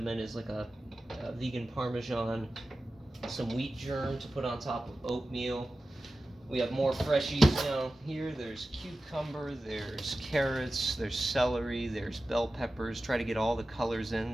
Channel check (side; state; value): both; normal; correlation 0.94